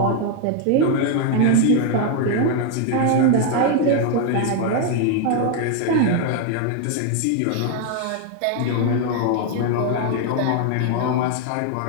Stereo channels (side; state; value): both; different; correlation 0.01